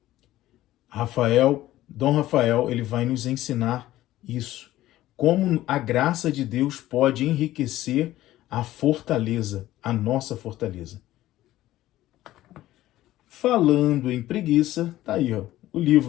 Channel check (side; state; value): right; quieter; 15.0 dB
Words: Dom Rafael, ele vai nos ensinar isso. Como a graça de Deus pode enriquecer a fortaleza, a nossa fortaleza. Falando em preguiça, tá aí, ó, o